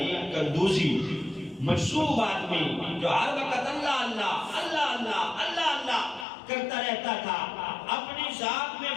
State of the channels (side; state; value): right; drops out; at 6.2 s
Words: قندوزی، مجذوب آدمی جو ہر وقت اللہ اللہ اللہ اللہ اللہ اللہ کرتا رہتا تھا، اپنی ذات میں